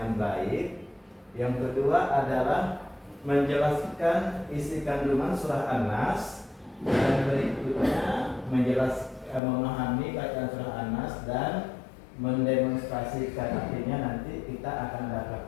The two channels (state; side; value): drops out; right; at 9.4 s